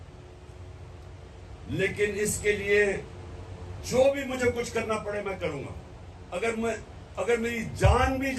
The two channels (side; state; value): both; identical; correlation 1.00